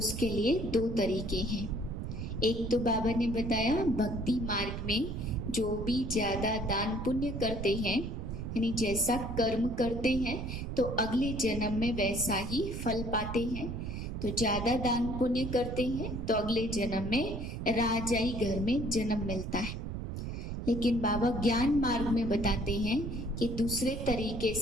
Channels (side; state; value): right; noise; rumble, 5 dB below the sound